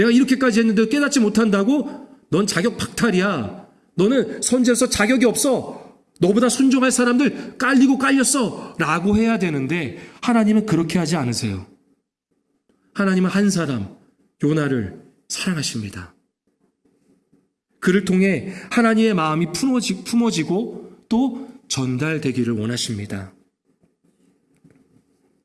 이렇게까지 했는데 깨닫지 못한다고? 넌 자격 박탈이야. 너는 선지자로서 자격이 없어. 너보다 순종할 사람들 깔리고 깔렸어. 라고 해야 되는데 하나님은 그렇게 하지 않으세요. 하나님은 한 사람, 요나를 사랑하십니다. 그를 통해 하나님의 마음이 품어지고 또 전달되기를 원하십니다.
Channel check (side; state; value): both; identical; correlation 1.00